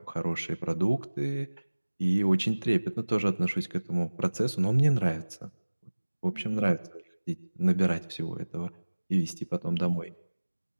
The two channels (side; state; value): both; inverted; correlation -1.00